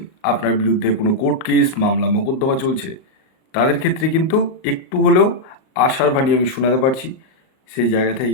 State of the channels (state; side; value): late; right; 38 ms